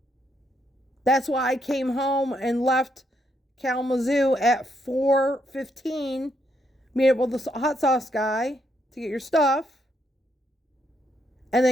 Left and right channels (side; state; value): both; normal; correlation 0.76